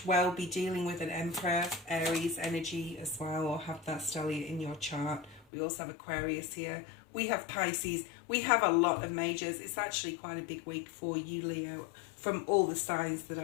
well be dealing with an Emperor, Aries energy as well, or have that stellium in your chart. We also have Aquarius here. We have Pisces. We have a lot of majors. It's actually quite a big week for you, Leo, from all the signs that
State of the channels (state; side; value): drops out; right; at 5.5 s